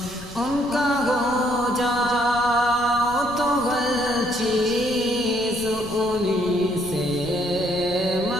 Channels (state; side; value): noise; left; rumble, 17 dB below the sound